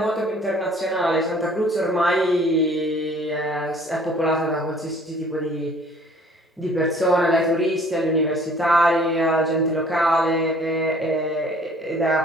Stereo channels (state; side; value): normal; both; correlation 0.54